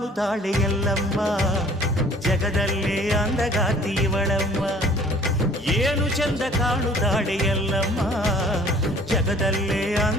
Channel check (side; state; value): both; normal; correlation 0.53